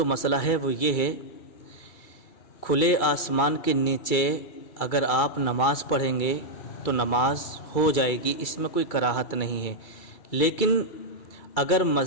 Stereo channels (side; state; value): right; late; 2.3 ms